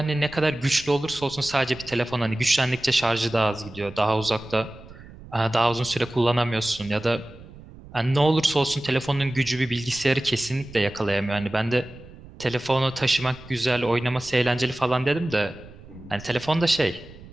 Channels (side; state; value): right; noise; rumble, 18 dB below the sound